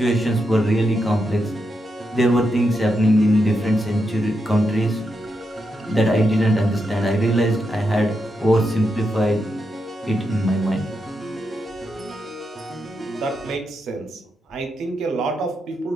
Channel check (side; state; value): both; normal; correlation 0.84